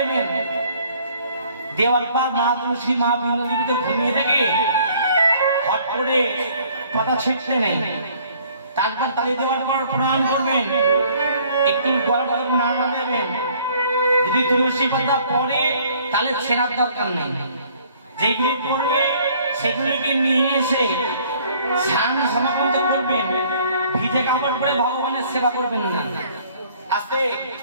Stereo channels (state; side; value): inverted; both; correlation -0.58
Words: দেওয়ার পর মা তুলসী, মা বিন্দুতে ঘুমিয়ে থেকে হট করে পাতা ছিটতে নেই। তারপর তালি দেওয়ার পর প্রণাম করবেন, একটু গলা নাড়া দেবেন। যদি তুলসী পাতা পড়ে তাহলে ছেঁড়ার দরকার নেই, যেগুলি পড়বে সেগুলিকে নিয়ে এসে স্নান সমাপন করবেন। ভিজে কাপড় পরে ভগবানের সেবা করবেন না, আস্তে